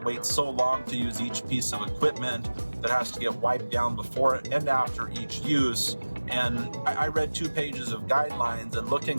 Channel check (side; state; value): both; inverted; correlation -1.00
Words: so long to use each piece of equipment that has to get wiped down before and after each use. And I read 2 pages of guidelines, and